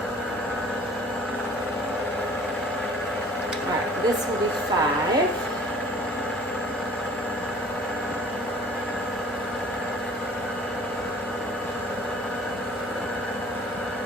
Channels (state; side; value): normal; both; correlation 0.50